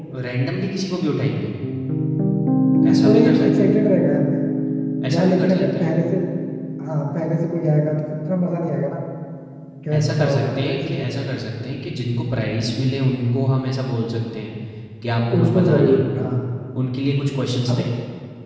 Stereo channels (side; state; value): both; identical; correlation 1.00